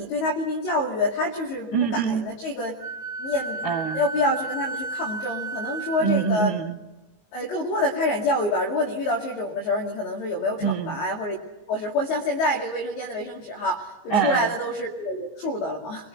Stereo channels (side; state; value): right; late; 19 ms